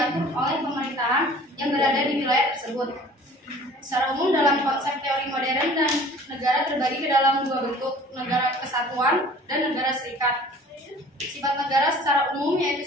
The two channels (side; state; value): both; normal; correlation 0.48